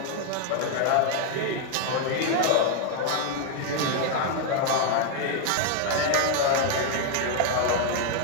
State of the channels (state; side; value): different; both; correlation 0.00